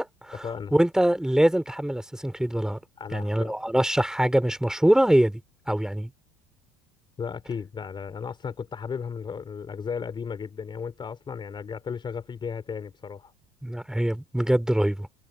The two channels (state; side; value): normal; both; correlation 0.97